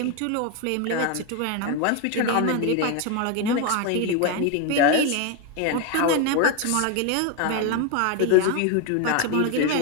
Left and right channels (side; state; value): both; different; correlation 0.02